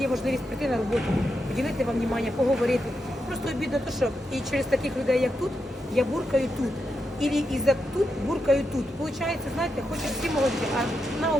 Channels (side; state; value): both; normal; correlation 0.85